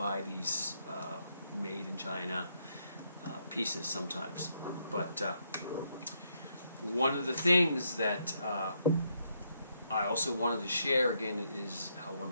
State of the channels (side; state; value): both; inverted; correlation -0.76